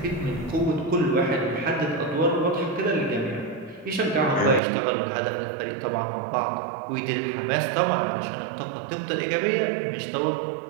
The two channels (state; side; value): drops out; left; at 4.6 s